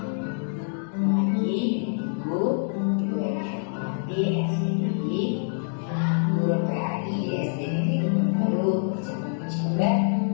Lagi ibu juga dihormati SDI, guru PAI di SD Negeri Kebun Baru, Kecamatan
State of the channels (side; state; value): right; silent; digital silence